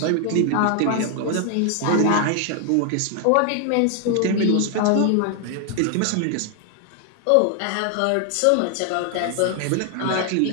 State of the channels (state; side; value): different; both; correlation 0.00